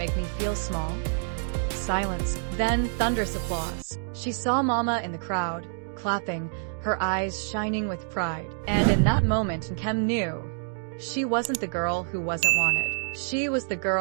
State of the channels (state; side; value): silent; left; digital silence